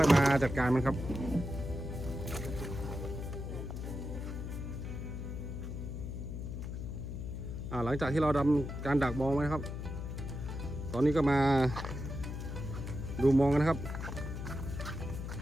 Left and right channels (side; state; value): left; noise; hum, 6 dB below the sound